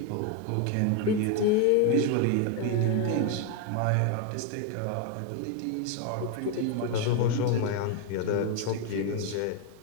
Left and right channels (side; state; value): both; different; correlation 0.01